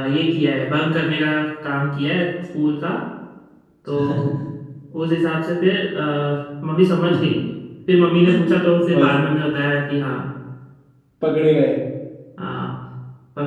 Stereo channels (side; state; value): both; identical; correlation 1.00